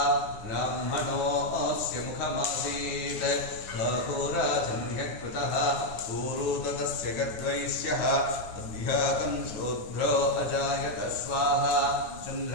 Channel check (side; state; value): right; late; 9.4 ms